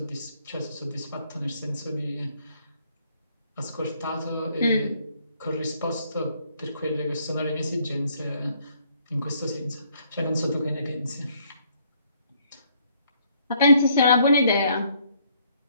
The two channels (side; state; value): both; inverted; correlation -0.67